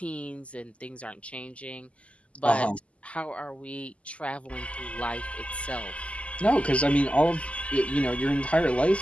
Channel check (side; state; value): right; late; 0.061 ms